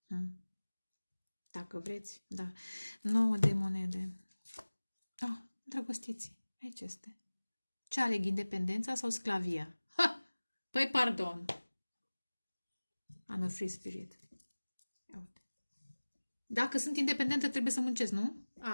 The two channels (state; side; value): inverted; both; correlation -1.00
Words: Dacă vreți, da. 9 de monede. Drăgostiți, aici este. Ce aleg, independența sau sclavia? Păi, pardon. I'm a free spirit. Ia uite. Dacă sunt independentă, trebuie să muncesc, nu?